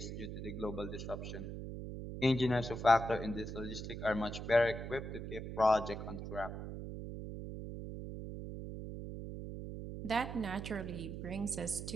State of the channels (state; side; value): noise; right; hum, 7 dB below the sound